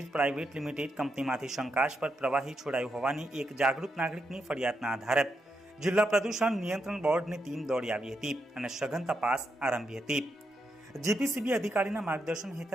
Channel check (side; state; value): both; normal; correlation 0.82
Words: પ્રાઇવેટ લિમિટેડ કંપનીમાંથી શંકાસ્પદ પ્રવાહી છોડાયું હોવાની એક જાગૃત નાગરિકની ફરિયાદના આધારે જિલ્લા પ્રદૂષણ નિયંત્રણ બોર્ડની ટીમ દોડી આવી હતી અને સઘન તપાસ આરંભી હતી। જીપીસીબી અધિકારીના માર્ગદર્શન